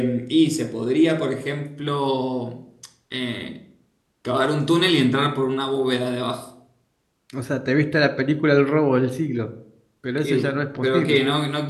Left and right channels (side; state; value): both; identical; correlation 1.00